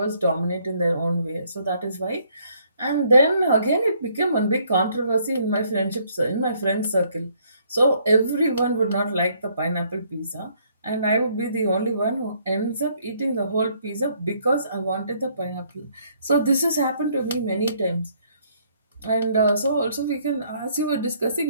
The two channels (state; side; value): inverted; both; correlation -0.67